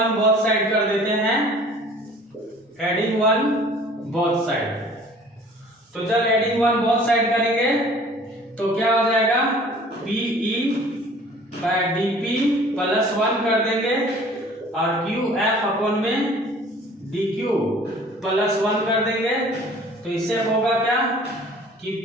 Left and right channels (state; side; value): normal; both; correlation 0.50